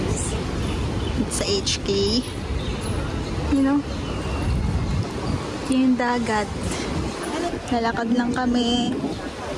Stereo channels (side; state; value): both; identical; correlation 1.00